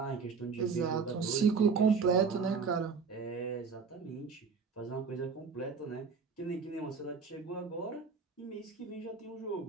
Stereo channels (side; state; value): left; quieter; 5.4 dB